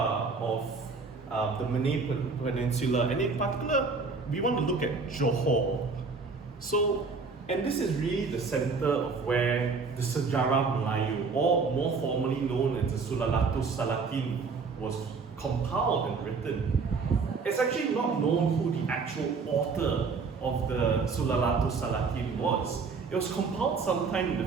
of the Malay Peninsula, and in particular, we want to look at Johor. And this is really the center of where the Sejarah Melayu, or more formally known as the Sulalatus Salatin, was compiled and written. It's actually not known who the actual author of the Sulalatus Salatin was. It was compiled sometime in the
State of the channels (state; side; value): quieter; left; 4.6 dB